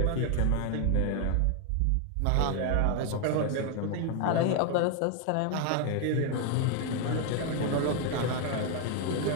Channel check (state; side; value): different; both; correlation 0.01